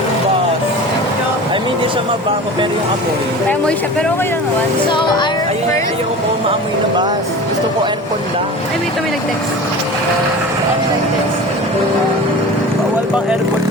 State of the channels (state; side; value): normal; both; correlation 0.36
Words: bus. I mean, di siya mabago, pero yung apoy. May amoy siya, pero okay lang naman. So, our Ayun, first... ayaw ko maamoy na bus. Gusto ko aircon lang. Ay, wait, may nag-text. Bawal bang aircon